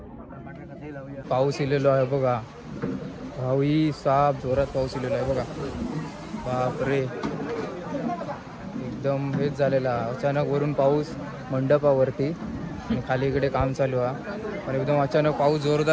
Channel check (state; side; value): identical; both; correlation 1.00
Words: पाऊस इलेलो आहे बघा. भाऊई साप जोरात पाऊस इलेलो आहे बघा. बापरे, एकदम हेच झालेला. अचानक वरून पाऊस मंडपावरती आणि खाली इकडे काम चालू आहे. पण एकदम अचानक पाऊस